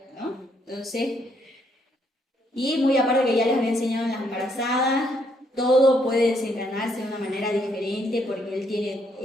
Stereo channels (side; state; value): both; normal; correlation 0.72